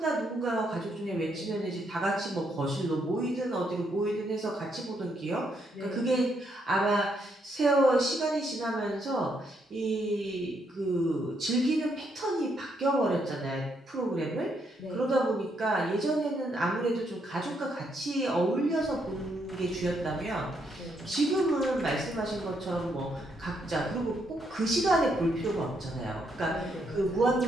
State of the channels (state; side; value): normal; both; correlation 0.76